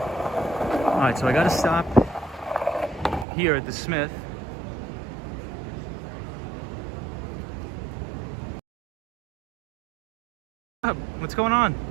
Alright, so I gotta stop here at the Smith. What's going on?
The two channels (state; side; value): drops out; left; at 3.2 s